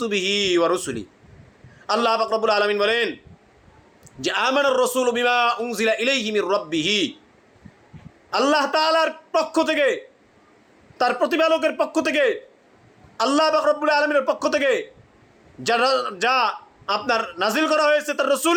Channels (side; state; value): both; identical; correlation 1.00